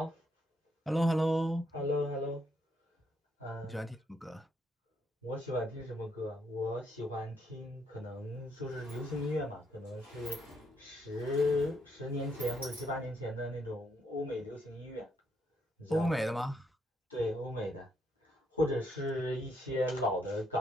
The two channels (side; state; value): both; normal; correlation 0.75